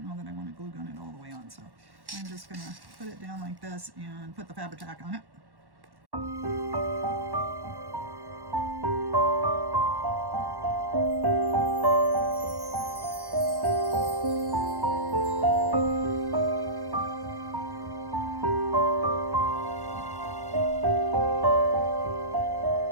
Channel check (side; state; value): left; late; 1.1 ms